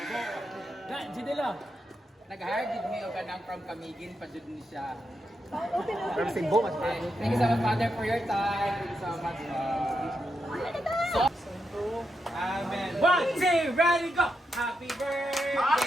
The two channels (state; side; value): normal; both; correlation 0.85